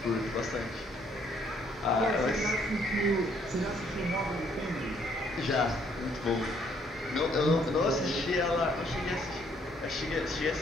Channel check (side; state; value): both; normal; correlation 0.67